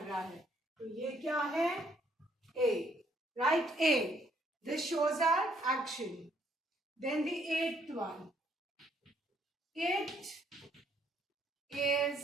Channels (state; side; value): normal; both; correlation 0.68